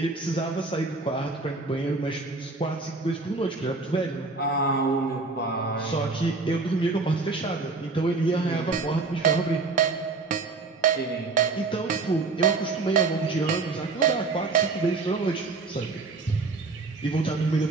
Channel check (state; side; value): quieter; left; 3.9 dB